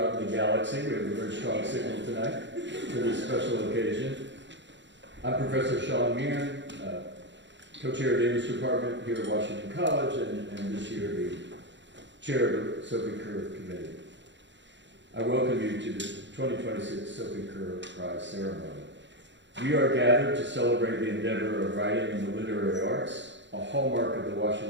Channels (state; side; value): late; left; 0.53 ms